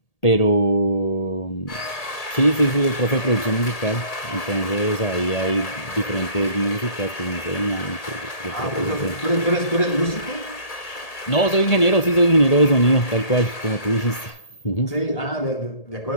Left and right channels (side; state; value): right; late; 1.8 ms